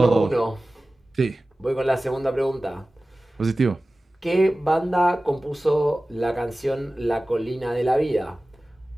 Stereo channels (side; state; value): both; normal; correlation 0.97